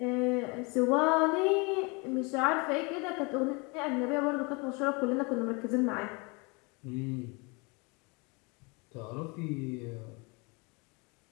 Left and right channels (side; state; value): right; quieter; 29.4 dB